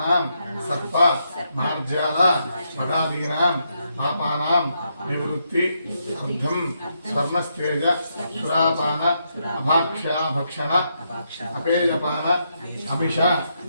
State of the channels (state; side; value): inverted; both; correlation -0.80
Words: సర్ప మార్జాల భగాదీనాం పాపానాం నివృత్తి అర్థం స్వర్ణస్తేజ సురాపాన అభాక్ష్యాభక్షణ అపేయపాన అభిష